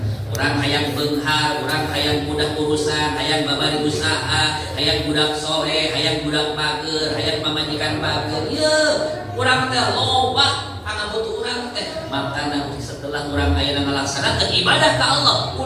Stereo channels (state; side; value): identical; both; correlation 1.00